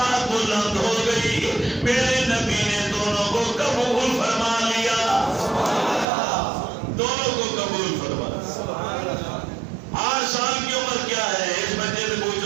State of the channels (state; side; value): drops out; left; at 6.1 s